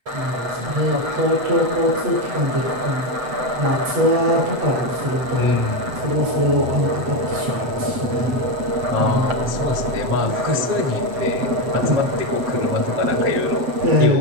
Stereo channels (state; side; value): late; left; 7.9 ms